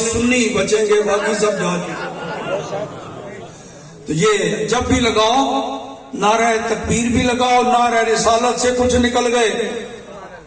سنی بچیں گے، باقی سب جا چکے. تو یہ جب بھی لگاؤ، نعرہ تکبیر بھی لگاؤ، نعرہ رسالت سے کچھ نکل گئے،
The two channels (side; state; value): both; identical; correlation 1.00